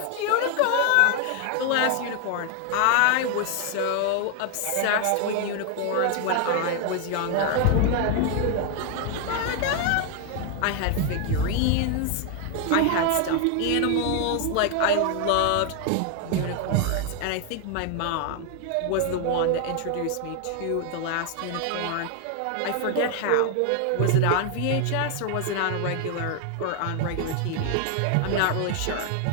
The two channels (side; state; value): both; different; correlation 0.00